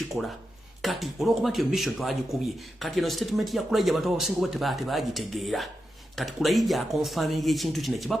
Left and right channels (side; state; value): both; normal; correlation 0.88